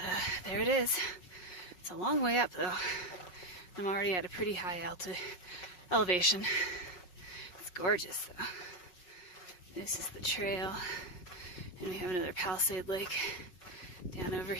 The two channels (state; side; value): late; right; 5.5 ms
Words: there it is. It's a long way up though. I'm already at a pretty high elevation. It's gorgeous though. This is the trail, and we have another Palisade Lake down over